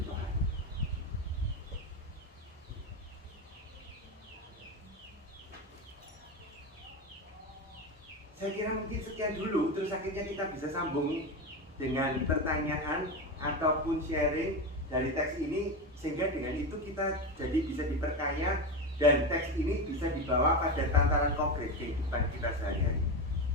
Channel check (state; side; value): normal; both; correlation 0.18